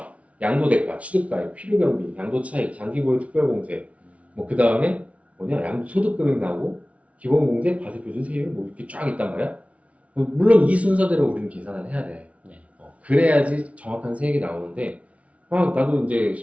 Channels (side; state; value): left; late; 0.065 ms